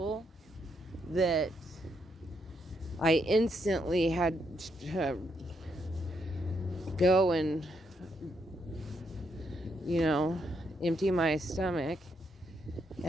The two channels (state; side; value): normal; both; correlation 0.78